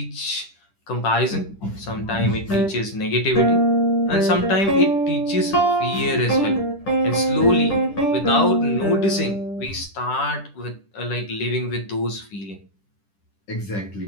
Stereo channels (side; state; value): right; late; 10 ms